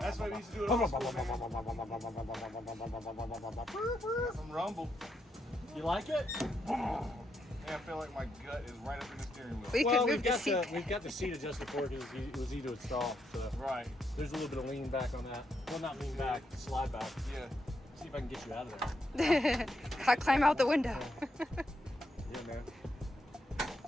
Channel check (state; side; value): normal; both; correlation 0.80